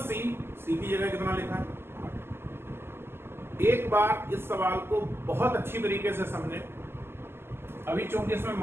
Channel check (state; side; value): late; left; 0.12 ms